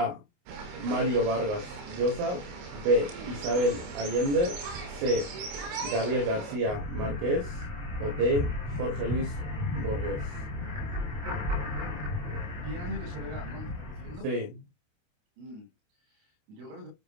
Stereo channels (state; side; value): late; left; 28 ms